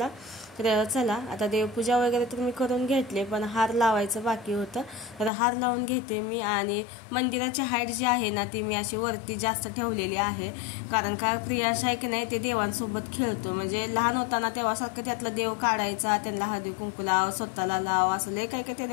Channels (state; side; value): drops out; right; at 5.3 s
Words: तर चला आता देवपूजा वगैरे तर मी करून घेतले, पण हार लावायचं बाकी होतं. तर हार लावून घेते मी. आणि मंदिराची हाईट जी आहे ना ती मी अशी वरती जास्त ठेवलेली आहे, कारण का प्रियांश आहे की नाही ते देवांसोबत खेळतो. म्हणजे लहान होताना तेव्हासारखं त्यातला देव काढायचा, त्यांना हळदी कुंकू लाव, स्वतःला लाव, असं लय काही त्याने